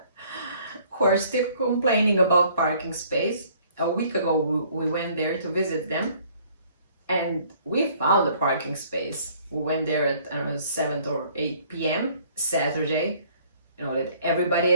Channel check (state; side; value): inverted; both; correlation -0.58